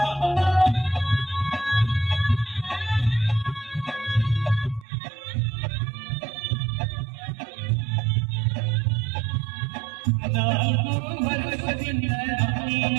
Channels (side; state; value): left; drops out; at 4.9 s